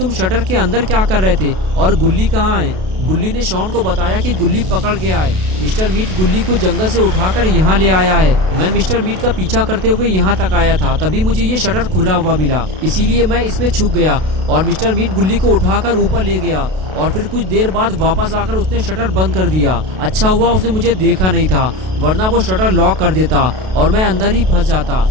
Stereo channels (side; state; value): left; late; 32 ms